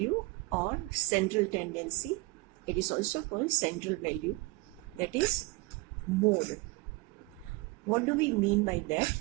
or central tendency. It is also called central value, that is mode. What do we mean by that?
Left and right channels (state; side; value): quieter; left; 23.1 dB